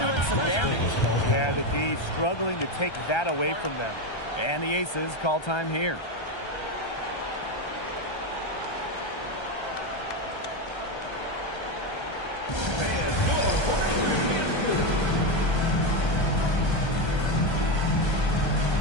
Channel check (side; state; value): right; late; 1.3 ms